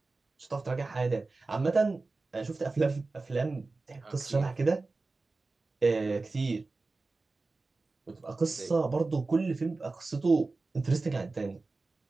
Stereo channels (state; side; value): quieter; left; 3.6 dB